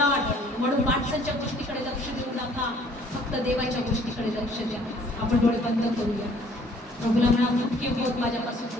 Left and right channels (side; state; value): both; normal; correlation 0.58